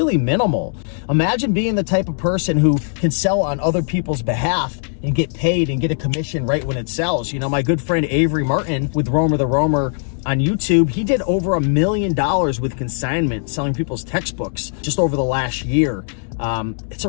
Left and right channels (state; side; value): silent; right; digital silence